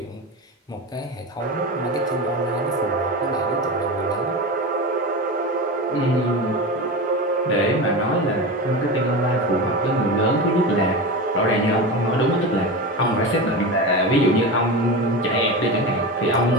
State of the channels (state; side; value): normal; both; correlation 0.24